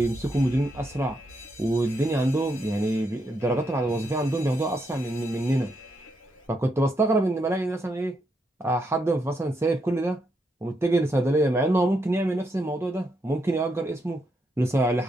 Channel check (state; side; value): normal; both; correlation 0.80